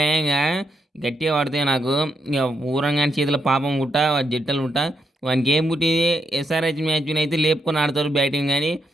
ఇంగ గట్టిగా పడతాయి నాకు. ఇక ఊరంగాని చేతిలో పాపం పుట్ట, జట్టలు పుట్ట. వానికి ఏం పుట్టింది ఎస్ఆర్‌హెచ్ మ్యాచ్‌నైతే లేపుకొని ఆడతారు బ్యాటింగ్ గాని,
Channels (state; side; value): normal; both; correlation 0.79